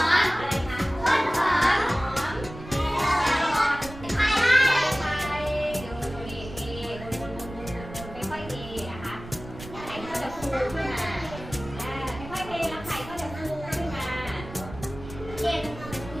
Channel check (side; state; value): right; noise; rumble, 13 dB below the sound